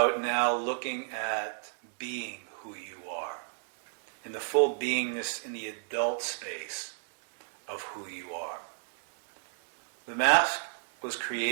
now looking at being who you are, in the full beingness in the adult space of who you are. The mask was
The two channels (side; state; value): left; silent; digital silence